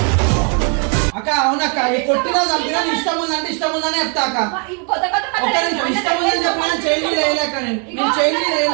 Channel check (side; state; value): left; quieter; 38.9 dB